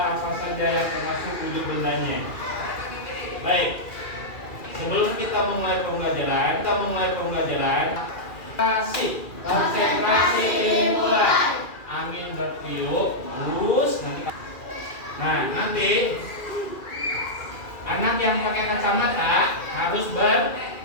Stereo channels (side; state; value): right; late; 2.4 ms